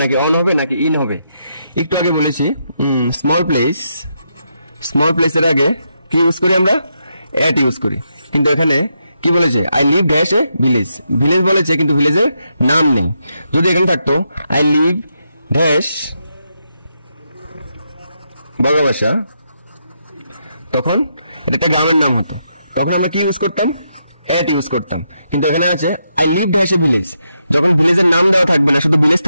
নাকি অন হবে নাকি ইন হবে? একটু আগে বলেছি স্মল প্লেসের আগে কি ইউজ করি আমরা? এট ইউজ করি। কিন্তু এখানে কি বলেছে? I live dash a village বলেছে, কিন্তু ভিলেজের নাম নেই। যদি এখানে থাকতো আই লিভ ড্যাশ বগাবাসা, তখন এটা একটা গ্রামের নাম হতো, তখন আমরা কি ইউজ করতাম? এট ইউজ করতাম। কিন্তু এখানে আছে I live dash a village, যখন ভিলেজের নাম দেওয়া থাকবে না, শুধু ভিলেজ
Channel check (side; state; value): both; inverted; correlation -0.82